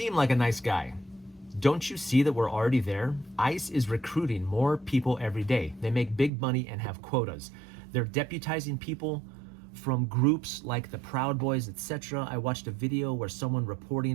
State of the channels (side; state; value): left; drops out; at 6.3 s